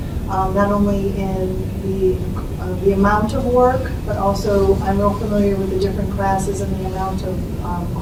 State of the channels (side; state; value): both; identical; correlation 1.00